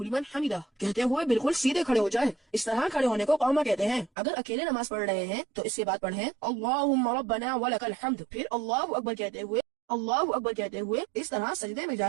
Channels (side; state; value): left; drops out; at 4.1 s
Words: لمن حمدہ کہتے ہوئے بالکل سیدھے کھڑے ہو جائیں۔ اس طرح کھڑے ہونے کو قوما کہتے ہیں۔ اگر اکیلے نماز پڑھ رہے ہیں تو اس کے بعد پڑھیں اللہم ربنا ولک الحمد، پھر اللہ اکبر کہتے ہوئے اس طرح سجدے میں